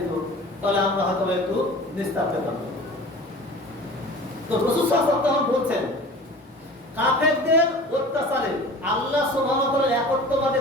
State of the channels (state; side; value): normal; both; correlation 0.40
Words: তাহলে আমরা হয়তো একটু নিস্তার পেতাম। তো রাসূল সাল্লাল্লাহু আলাইহি ওয়াসাল্লাম বলছেন, কাফেরদের অত্যাচারে আল্লাহ সুবহানাহু ওয়া তাআলা